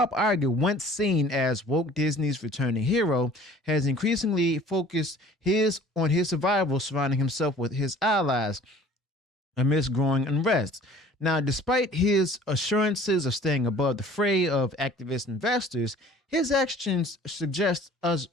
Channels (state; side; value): normal; both; correlation 0.49